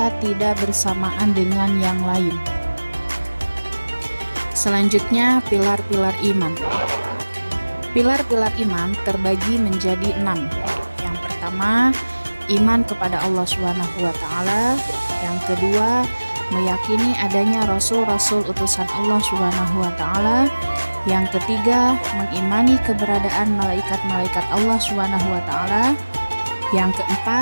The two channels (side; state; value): both; inverted; correlation -1.00